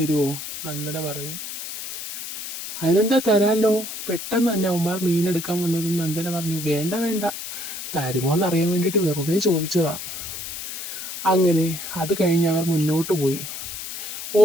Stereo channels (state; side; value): noise; left; hiss, 8 dB below the sound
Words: നന്ദന പറഞ്ഞു. അതിനെന്താ, തരാമല്ലോ. പെട്ടെന്ന് തന്നെ അവന്മാർ മീനെടുക്കാൻ വന്നതും നന്ദന പറഞ്ഞു, വേണ്ട വേണ്ട, തരുമോ എന്നറിയാൻ വേണ്ടിയിട്ട് വെറുതെ ചോദിച്ചതാ. അങ്ങനെ അത് കഴിഞ്ഞ് അവർ മുന്നോട്ട് പോയി.